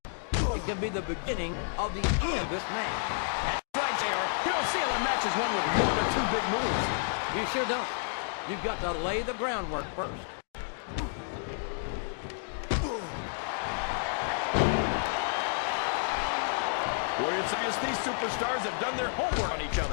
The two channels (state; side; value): silent; right; digital silence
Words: It can be the beginning of the end of this match. That's right, JR. You don't see a lot of matches won with one or two big moves. You sure don't. You've got to lay the groundwork first. Boy, it's obvious these superstars have done their homework on each